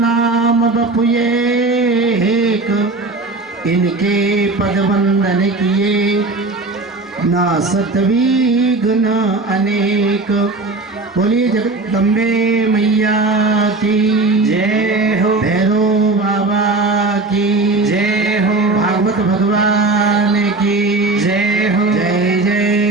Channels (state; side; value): quieter; left; 3.4 dB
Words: बपुए एक इनके पद वंदन किए ना सतविघ्न अनेक। बोलिए जगदम्बे मैया की जय हो, भैरव बाबा की जय हो, भागवत भगवान की जय हो, जय